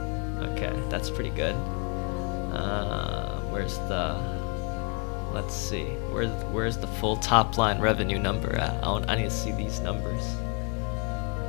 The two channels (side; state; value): right; quieter; 35.6 dB